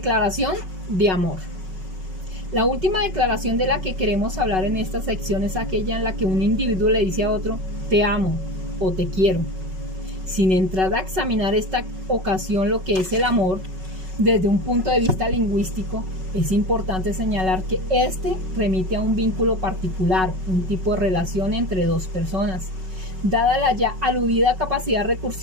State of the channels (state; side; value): late; left; 5.4 ms